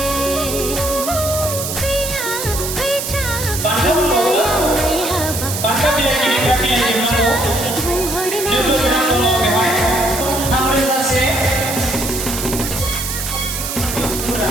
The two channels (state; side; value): noise; right; hiss, 5 dB below the sound